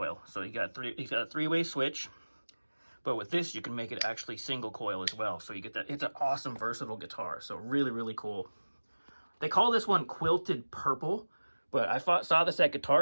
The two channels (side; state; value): both; inverted; correlation -1.00